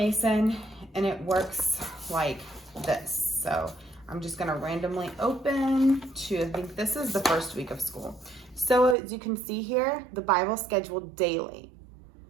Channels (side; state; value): left; drops out; at 9.0 s